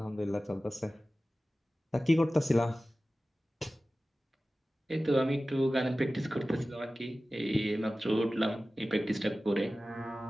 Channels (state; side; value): normal; both; correlation 0.96